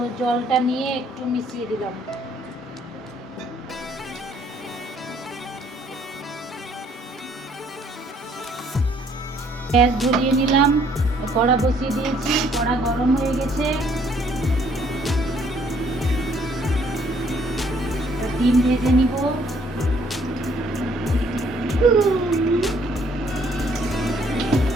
জলটা নিয়ে একটু মিশিয়ে দিলাম। গ্যাস ধরিয়ে নিলাম, কড়া বসিয়ে দিয়েছি, কড়া গরম হয়ে গেছে। ডিম ভেজে নিব।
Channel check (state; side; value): normal; both; correlation 0.64